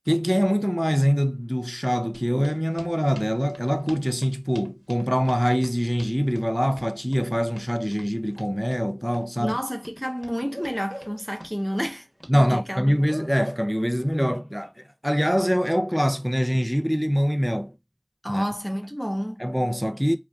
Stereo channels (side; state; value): both; identical; correlation 1.00